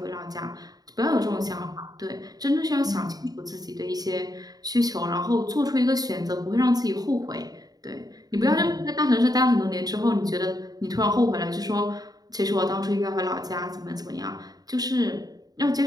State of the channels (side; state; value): left; late; 0.18 ms